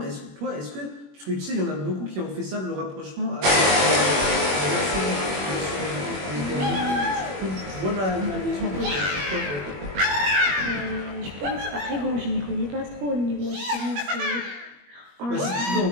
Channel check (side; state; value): left; late; 21 ms